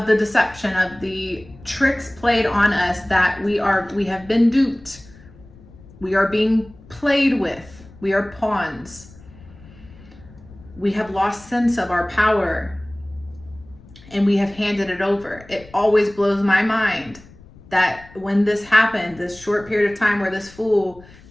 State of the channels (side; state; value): left; noise; rumble, 22 dB below the sound